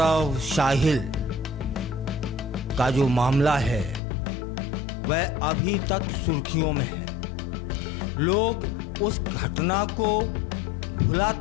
साहिल का जो मामला है वह अभी तक सुर्खियों में है। लोग उस घटना को भुला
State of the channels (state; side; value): drops out; right; at 4.0 s